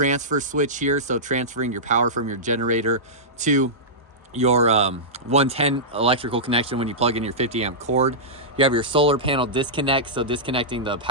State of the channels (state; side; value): normal; both; correlation -0.14